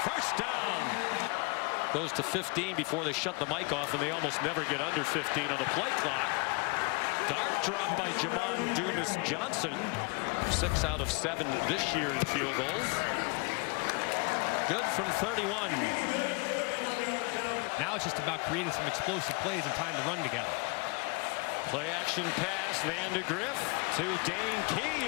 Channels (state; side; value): quieter; right; 30.1 dB